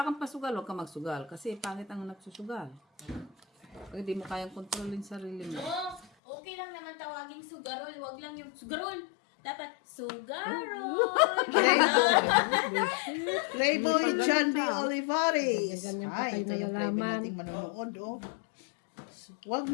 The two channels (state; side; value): drops out; right; at 6.1 s